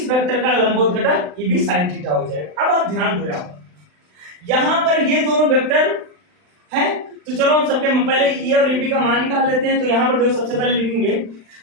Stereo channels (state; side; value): late; left; 39 ms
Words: वेक्टर का लंबवत घटक ये भी sin थीटा हो जाएगा। अब आप ध्यान दो, यहाँ पर ये दोनों वेक्टर है, तो चलो हम सबके पहले E और AB का मान निकाल लेते हैं। तो यहाँ पर देखो सबसे पहले लिखेंगे